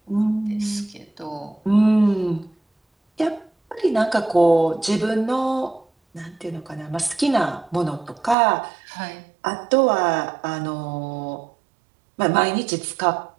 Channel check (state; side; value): drops out; left; at 8.3 s